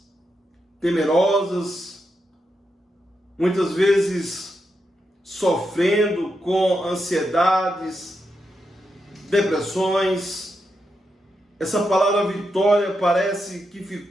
temerosas, muitas vezes sofrendo com ansiedades, depressões, essa palavra vitória parece que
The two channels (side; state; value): both; normal; correlation 0.85